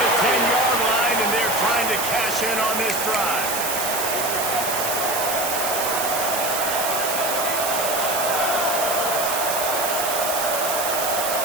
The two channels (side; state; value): right; noise; hiss, 2 dB below the sound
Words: the 10-yard line, and they're trying to cash in on this drive.